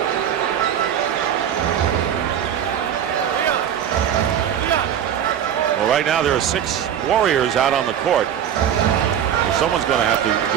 Well, right now there are 6 Warriors out on the court. So someone's going to have to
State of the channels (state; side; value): quieter; left; 9.4 dB